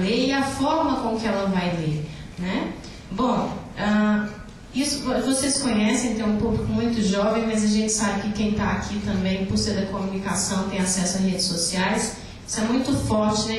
e a forma com que ela vai ler, né? Bom, isso vocês conhecem, tem um público muito jovem, mas a gente sabe que quem está aqui também, por ser da comunicação, tem acesso a redes sociais. Isso é muito forte,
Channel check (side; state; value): both; identical; correlation 1.00